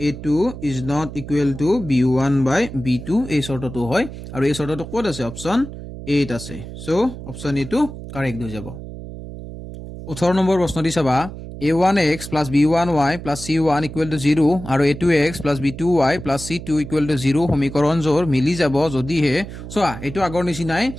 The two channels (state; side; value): noise; right; hum, 11 dB below the sound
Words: = b1/b2 এই শৰ্তটো হয় আৰু এই শৰ্তটো কোড আছে অপচন 8 আছে সো অপচন এ টো কাৰেক্ট হৈ যাব 18 নম্বৰ প্ৰশ্নটি চাবা a1x + b1y + c1 = 0 আৰু a2x + b2y + c2 = 0 সমীকৰণ জোৰ মিলি যাব যদিহে সোয়া এটো আগৰ নিচিনাই